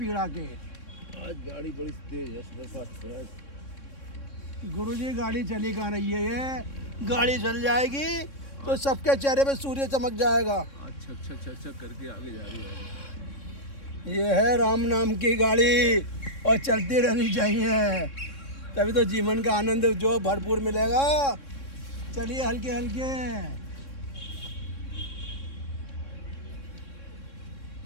के। आज गाड़ी बड़ी तेज है, सुपरफास्ट है। गुरुजी, गाड़ी चली कहाँ रही है? ये गाड़ी चल जाएगी तो सबके चेहरे पे सूर्य चमक जाएगा। अच्छा अच्छा अच्छा अच्छा करके आगे जा रही है। ये है राम नाम की गाड़ी और चलती रहनी चाहिए, तभी तो जीवन का आनंद जो भरपूर मिलेगा। चलिए हल्के हल्के।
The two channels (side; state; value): right; late; 3.6 ms